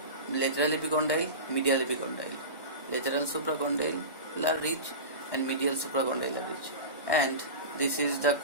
Lateral epicondyle, medial epicondyle, lateral supracondylar ridge and medial supracondylar ridge. And this is the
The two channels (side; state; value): right; late; 1.1 ms